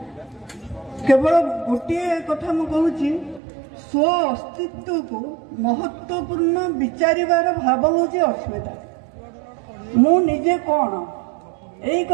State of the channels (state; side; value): drops out; left; at 3.4 s